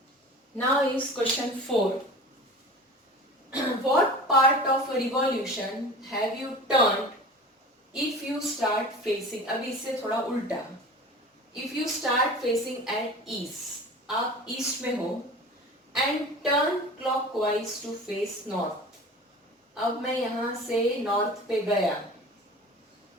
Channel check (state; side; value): normal; both; correlation 0.38